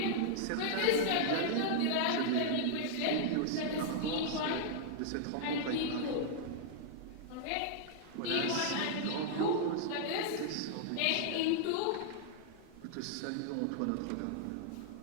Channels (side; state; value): both; different; correlation -0.01